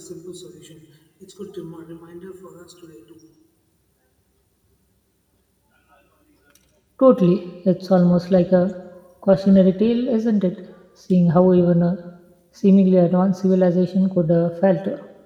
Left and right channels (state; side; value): identical; both; correlation 1.00